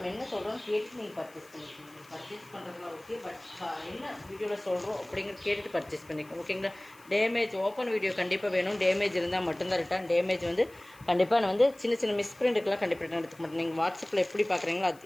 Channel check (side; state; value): left; noise; hiss, 26 dB below the sound